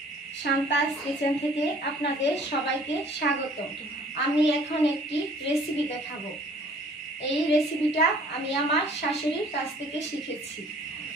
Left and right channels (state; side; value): normal; both; correlation 0.54